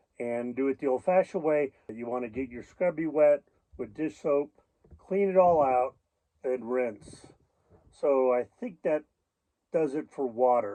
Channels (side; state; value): both; identical; correlation 1.00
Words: and do it the old-fashioned way. You want to get your scrubby wet with dish soap, clean it all out, and rinse. So I think that does it for